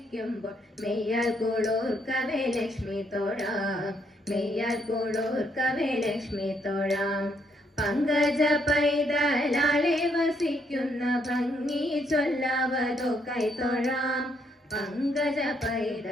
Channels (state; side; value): normal; both; correlation 0.73